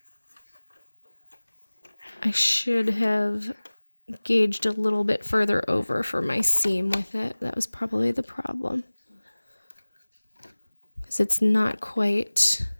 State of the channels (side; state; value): both; inverted; correlation -1.00